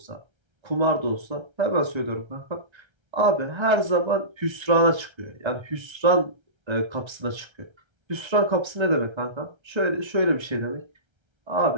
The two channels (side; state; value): left; late; 1.3 ms